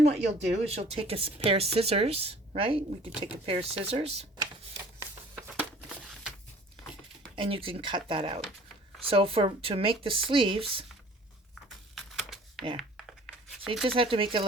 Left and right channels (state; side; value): normal; both; correlation 0.50